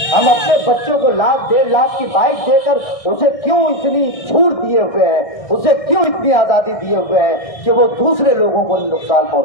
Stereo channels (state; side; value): late; right; 1.6 ms